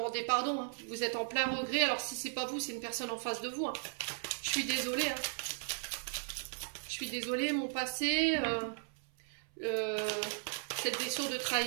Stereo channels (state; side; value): silent; left; 53 dB below the other